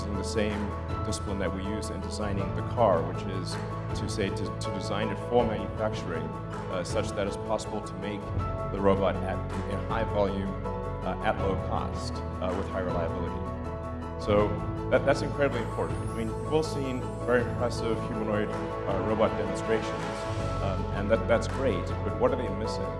the same discipline that we use in designing the car, which is to design it for manufacturing such that it's possible to make the robot in high volume at low cost with high reliability. So that's incredibly important. I mean, we've all seen very impressive humanoid robot demonstrations, and that's great, but what are they missing?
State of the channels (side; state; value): both; identical; correlation 1.00